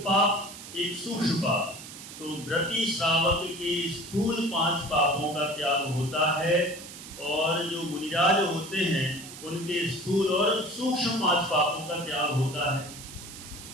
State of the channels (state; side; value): noise; right; hiss, 14 dB below the sound